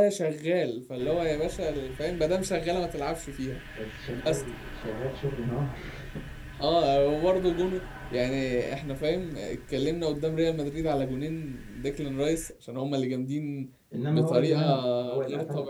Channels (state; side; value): identical; both; correlation 1.00